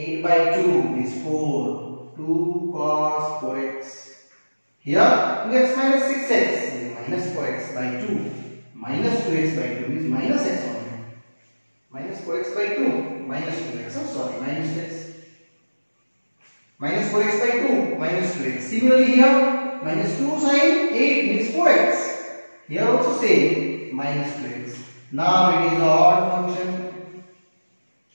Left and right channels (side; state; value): both; inverted; correlation -1.00